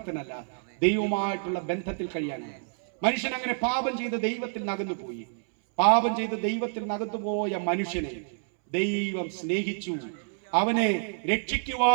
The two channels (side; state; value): left; silent; 59 dB below the other